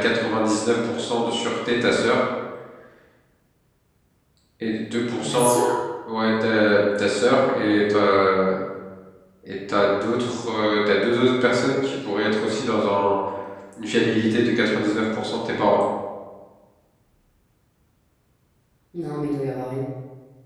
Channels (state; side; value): identical; both; correlation 1.00